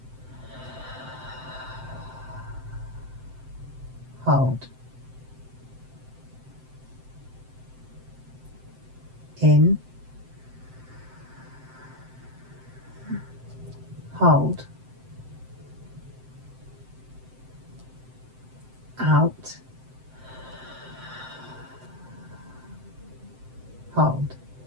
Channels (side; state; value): left; late; 7.8 ms